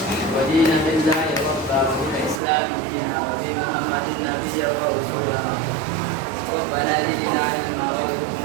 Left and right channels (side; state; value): left; drops out; at 2.4 s